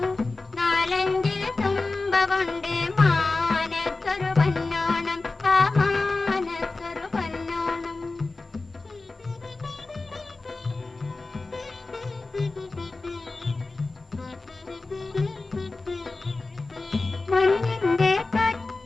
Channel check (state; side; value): quieter; right; 3.5 dB